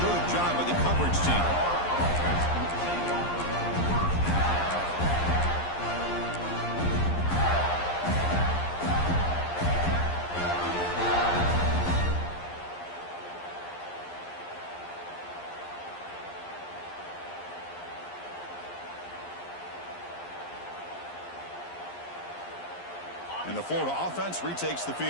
good job by the coverage team. And the Florida offense retakes the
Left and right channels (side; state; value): right; late; 11 ms